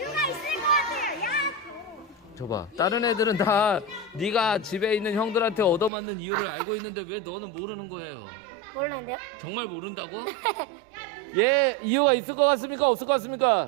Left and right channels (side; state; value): left; drops out; at 5.9 s